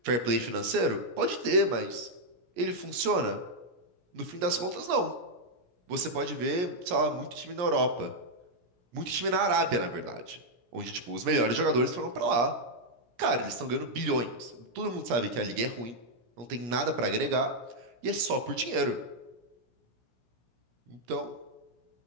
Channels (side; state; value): left; late; 17 ms